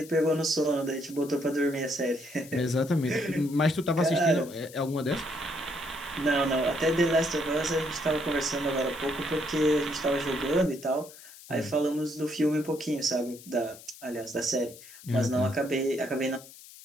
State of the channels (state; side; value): noise; left; hiss, 19 dB below the sound